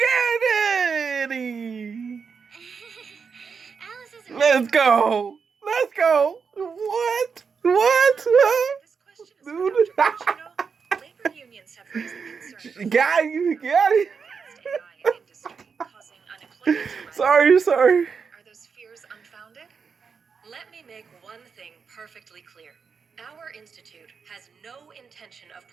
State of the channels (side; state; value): left; quieter; 5.8 dB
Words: it! Alice isn't Let's go! Let's go! What? What? This question is Dude. for Dr. Bush, labor unions have raised the concern. Got you, got it. AI industry causing unemployment to rise. Sorry. Are those fears unfounded? Let me make one thing perfectly clear. Our institute has no intention of